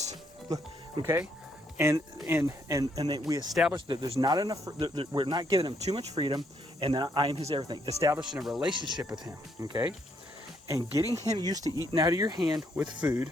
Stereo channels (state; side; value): normal; both; correlation 0.72